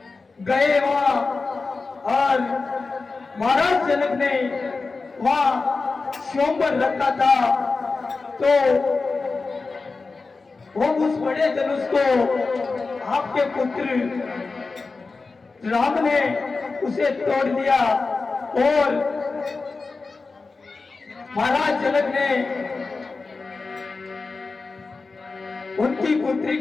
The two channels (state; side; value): quieter; right; 4.0 dB